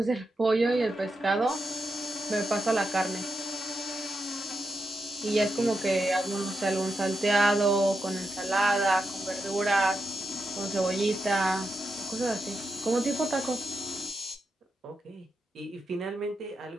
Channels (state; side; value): normal; both; correlation 0.86